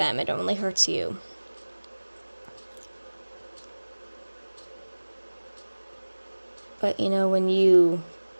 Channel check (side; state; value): both; inverted; correlation -1.00